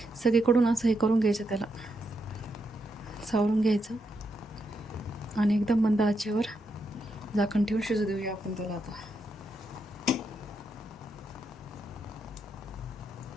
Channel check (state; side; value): normal; both; correlation 0.82